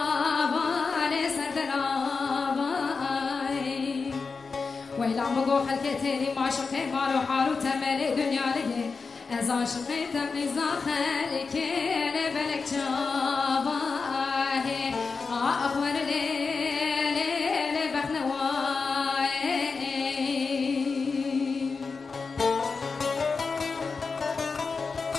لسردن آبا ویلا مگو خلکتی لی ماشقی مالو حالو تملی دنیا لگه از عاشقی تقیزا خلک لبلک جواه آخور لیل بخنوای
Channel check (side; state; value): right; quieter; 4.7 dB